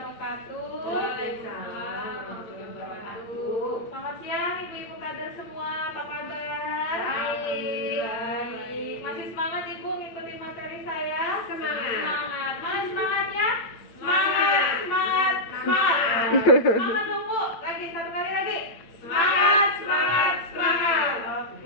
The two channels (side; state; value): right; late; 8.9 ms